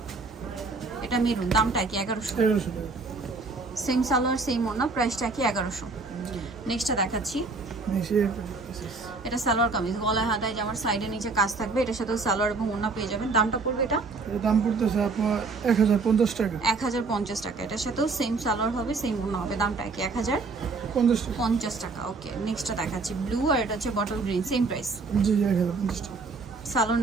এটা মেরুন, দামটা কি? 1100 টাকা। সেম সালোয়ার সেম ওড়না, প্রাইসটা কি? 1100। নেক্সটটা দেখাচ্ছি, এটা সালোয়ার কামিজ, গলায় হাতায় জামার সাইডে নিচে কাজ থাকবে। এটার সাথে সালোয়ার এবং ওড়না পেয়ে যাবেন। দামটা পড়বে এটা? এর দাম পড়তেছে আপনার 1050 টাকা। 1050 টাকা। এটার সাথেও সেম সালোয়ার হবে, সেম ওড়না হবে। দামটা কি? 1050 টাকা। ওকে, নেক্সটটা দেখাচ্ছি, ব্লু, আর এটা হচ্ছে বটল গ্রিন, সেম প্রাইস। জি, 1050 টাকা। সালোয়ার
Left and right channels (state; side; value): quieter; left; 4.0 dB